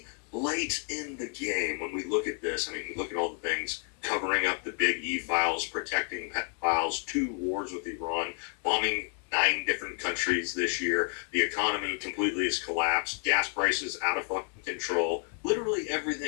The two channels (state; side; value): quieter; right; 40.0 dB